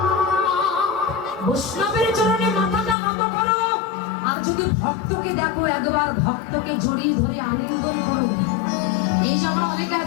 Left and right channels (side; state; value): right; drops out; at 3.0 s